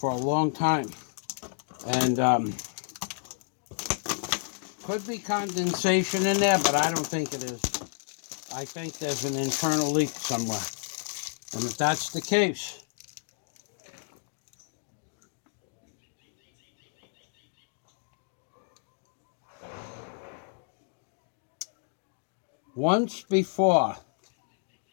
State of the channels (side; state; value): right; silent; digital silence